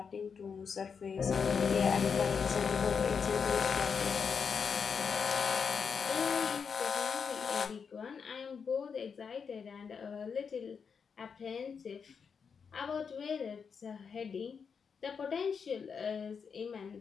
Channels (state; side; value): quieter; right; 6.1 dB